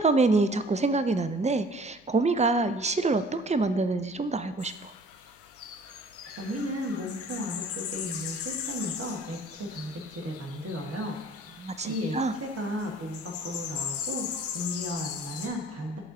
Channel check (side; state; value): left; noise; hum, 30 dB below the sound